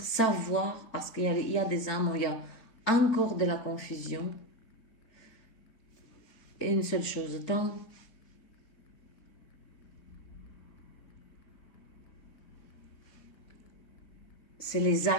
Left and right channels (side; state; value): right; late; 3.9 ms